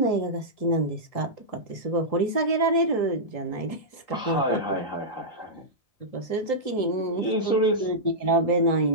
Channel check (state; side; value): late; right; 3.8 ms